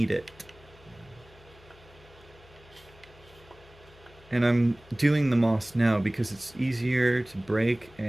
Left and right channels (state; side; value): noise; left; hum, 25 dB below the sound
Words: it. And I'm doing the moss now because it's easier to break,